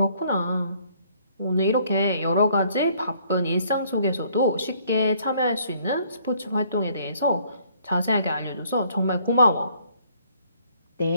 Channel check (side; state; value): both; inverted; correlation -0.62